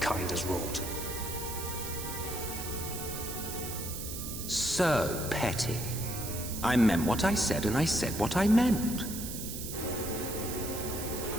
has wrought. So petty. I meant what I said, and I said what I meant.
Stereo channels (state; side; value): noise; right; hiss, 7 dB below the sound